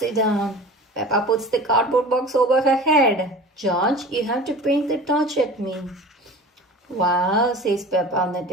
down. Peppa puts the cardboard box over her head. George, you have to point the torch at me. Wow, says Peppa, on the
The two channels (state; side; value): normal; both; correlation 0.39